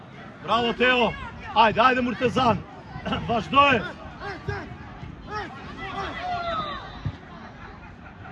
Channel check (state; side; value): identical; both; correlation 1.00